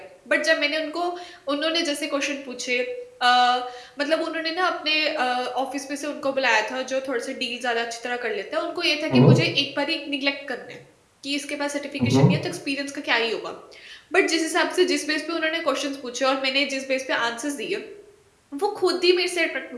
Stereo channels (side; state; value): both; identical; correlation 1.00